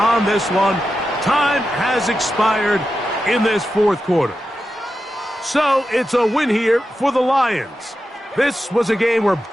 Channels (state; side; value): normal; both; correlation 0.90